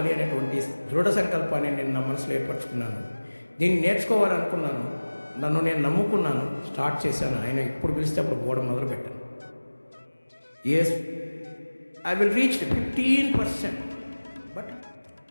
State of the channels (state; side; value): inverted; both; correlation -1.00